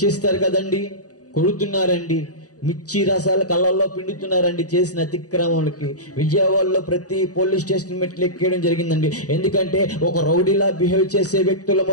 కదండి. కొడుతున్నారండి, మిర్చి రసాల కళ్ళల్లో పిండుతున్నారండి చేసిన అతిక్రమాలకి. విజయవాడలో ప్రతి పోలీస్ స్టేషన్ మెట్లు ఎక్కేయడం జరిగిందండి. ఎందుకంటే ఒక రౌడీలా బిహేవ్ చేసే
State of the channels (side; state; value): right; late; 0.67 ms